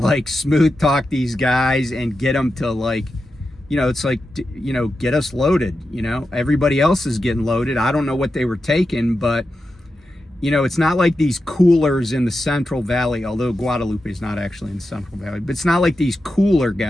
smooth talk these guys and get them to like, it's like, get us loaded. Everybody else is getting loaded. I don't know what they were taking, but it's not like these coolers in the Central Valley, although Guadalupe is not actually in the Central Valley, but it's not like these cooler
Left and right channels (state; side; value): normal; both; correlation 0.90